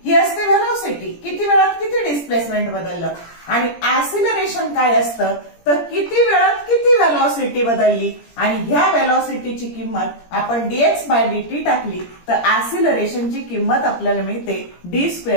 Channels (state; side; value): late; right; 17 ms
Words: ही असते व्हेलॉसिटी, किती वेळात किती डिस्प्लेसमेंट बदललं। आणि ऍक्सिलरेशन काय असतं तर किती वेळात किती व्हेलॉसिटी बदलली आणि ह्या व्हेलॉसिटीची किंमत आपण dx/dt टाकली तर ऍक्सिलरेशनची किंमत आपल्याला मिळते